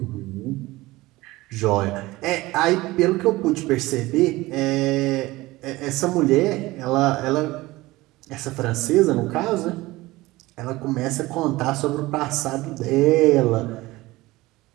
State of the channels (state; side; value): quieter; left; 19.4 dB